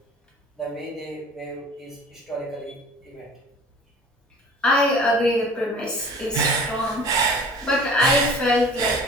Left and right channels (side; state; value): both; normal; correlation 0.45